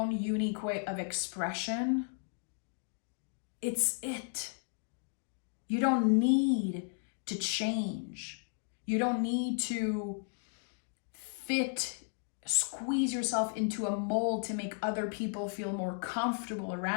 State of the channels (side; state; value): right; silent; 55 dB below the other